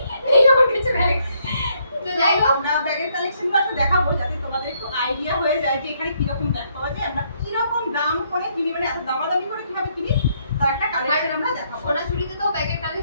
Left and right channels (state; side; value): inverted; both; correlation -0.72